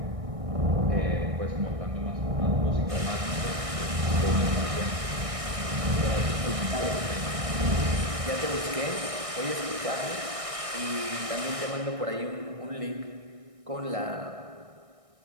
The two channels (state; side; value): late; left; 1.6 ms